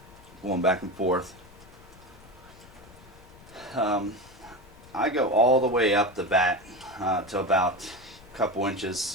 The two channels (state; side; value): noise; left; rumble, 22 dB below the sound